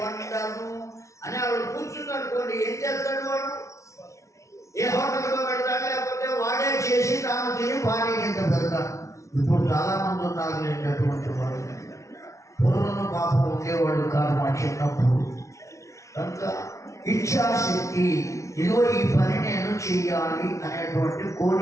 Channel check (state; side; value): late; right; 0.14 ms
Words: వంటను అని వాడు కూర్చుందనుకోండి, ఏం చేస్తాడు వాడు? ఏ హోటల్తో పెడతాడు, లేకపోతే వాడే చేసి తాను తిని భార్య కింద పెడతాడు. ఇప్పుడు చాలామంది ఉన్నారు అటువంటి వాళ్ళు. పూర్వం పాపం ఉండేవాడు కాదు మా చిన్నప్పుడు. కనుక ఇచ్ఛాశక్తి, ఇదిగో ఈ పని నేను చెయ్యాలి అనేటువంటి